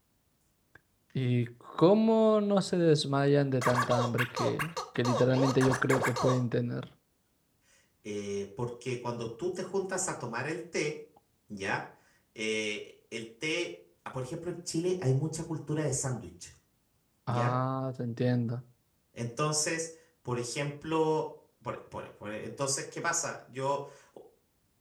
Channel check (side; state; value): both; identical; correlation 1.00